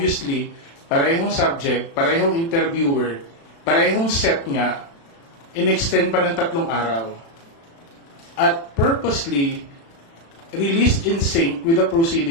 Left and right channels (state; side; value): late; right; 36 ms